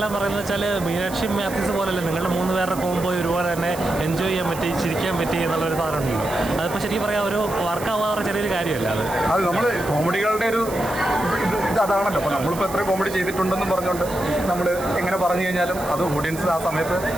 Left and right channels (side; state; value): right; noise; hiss, 14 dB below the sound